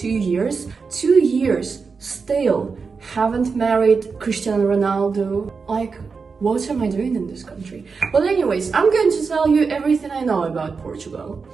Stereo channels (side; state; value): left; quieter; 5.0 dB